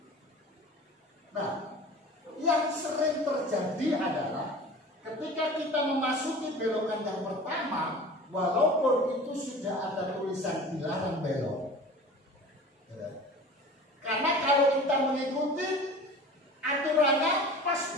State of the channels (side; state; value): both; normal; correlation 0.40